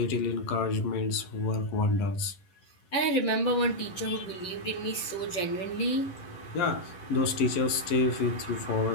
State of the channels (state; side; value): late; right; 11 ms